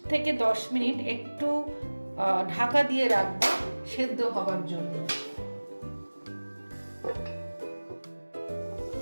থেকে 10 মিনিট একটু ঢাকা দিয়ে রাখবো সেদ্ধ হবার জন্য।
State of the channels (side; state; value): both; inverted; correlation -1.00